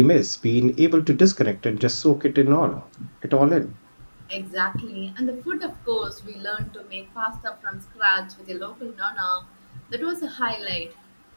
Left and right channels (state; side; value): inverted; both; correlation -1.00